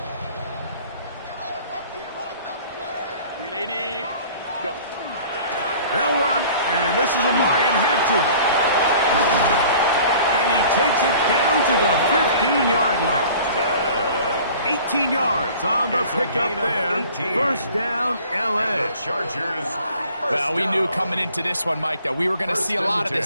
380, go. They'll run, and this is Amarian Hampton. And he takes it down to the 15-yard line. 18 yards on the pickup there. First down, L.A. Chargers. Well, we knew coming into this one, Mike, that we were going to see a lot of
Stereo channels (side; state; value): both; inverted; correlation -0.48